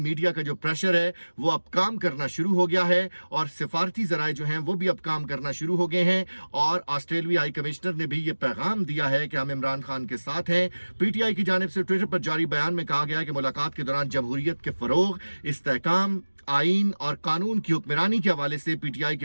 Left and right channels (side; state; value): both; inverted; correlation -1.00